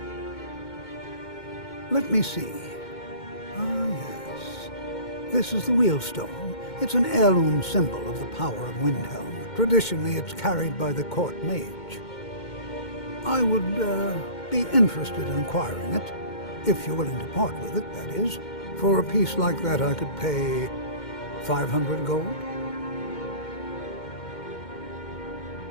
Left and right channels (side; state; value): right; late; 2.1 ms